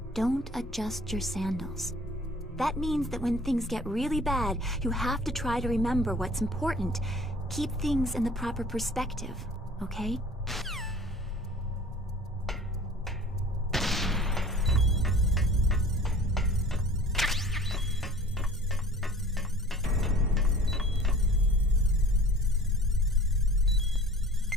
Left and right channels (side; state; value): both; normal; correlation 0.48